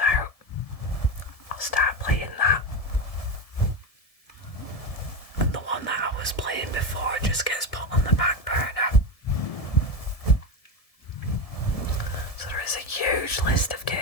out. I'll start playing that. And the one that I was playing before just gets put on the back burner. So there is a huge list of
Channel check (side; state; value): right; late; 1.7 ms